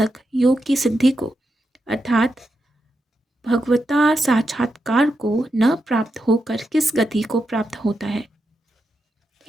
योग की सिद्धि को अर्थात भगवता साक्षात्कार को न प्राप्त होकर किस गति को प्राप्त होता है?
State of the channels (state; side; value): normal; both; correlation 0.86